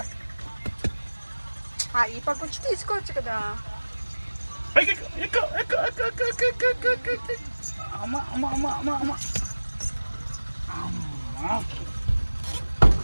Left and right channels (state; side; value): inverted; both; correlation -1.00